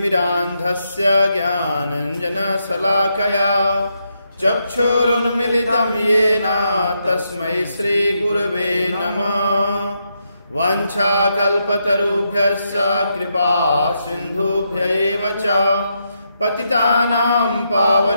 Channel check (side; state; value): both; inverted; correlation -0.81